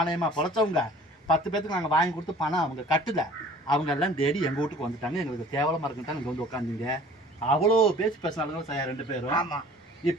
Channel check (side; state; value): both; normal; correlation 0.49